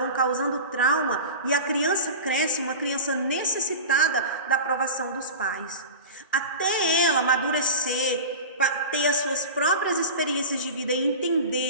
causando trauma e a criança cresce, uma criança necessitada da aprovação dos pais. Até ela amadurecer, ter as suas próprias experiências de vida e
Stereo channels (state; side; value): inverted; both; correlation -0.31